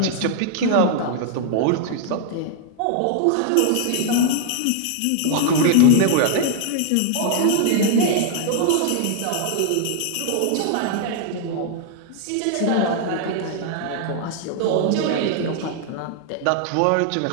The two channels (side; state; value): both; different; correlation -0.01